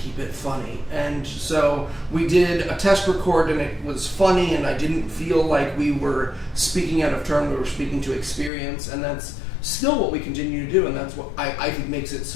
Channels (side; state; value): right; drops out; at 8.5 s